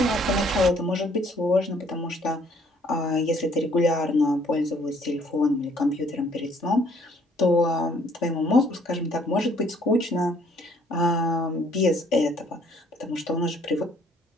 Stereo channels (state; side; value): normal; both; correlation 0.62